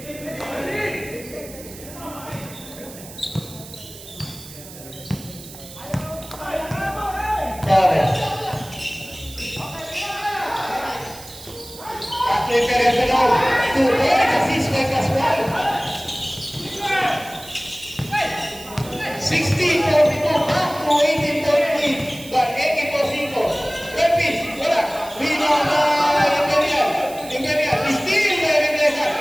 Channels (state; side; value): noise; right; hiss, 16 dB below the sound